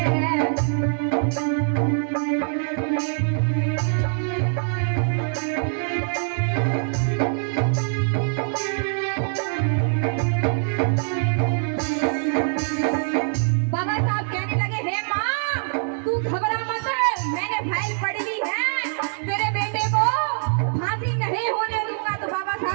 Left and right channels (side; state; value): left; silent; digital silence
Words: बाबा साहब कहने लगे, हे माँ तू घबरा मत, मैंने फाइल पढ़ ली है, तेरे बेटे को फांसी नहीं होने दूंगा। तो बाबा